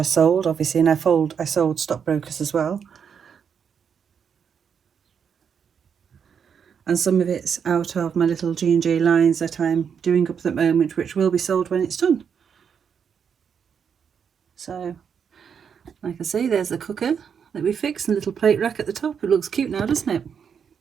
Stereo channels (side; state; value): left; quieter; 7.2 dB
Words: sold, obviously, and I sold stockbrokers as well. And some of it's out of my little G&J lines that I'm doing up at the moment, which will be sold when it's done. So, like I say, there's the cooker that we fixed and the little plate rack at the top. It looks cute now, doesn't it?